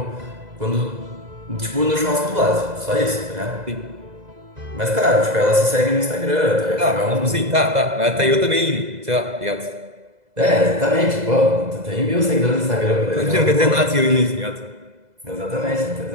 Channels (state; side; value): late; left; 2.0 ms